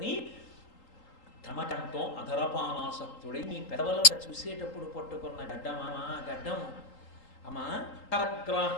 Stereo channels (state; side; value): late; right; 3.8 ms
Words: తమకంతో అధరపానాసక్తుడై నీ పెదవుల చూసేటప్పుడు పట్టుకున్న గడ్డమా గడ్డం అమ్మా